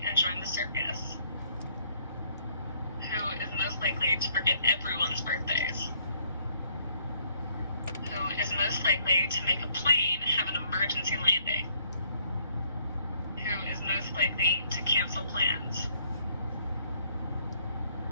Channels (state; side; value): inverted; both; correlation -0.66